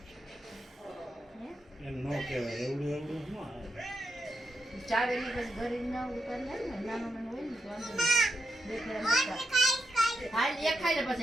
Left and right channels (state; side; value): normal; both; correlation 0.85